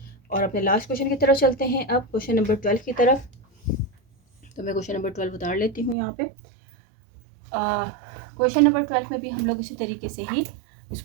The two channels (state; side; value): drops out; left; at 6.0 s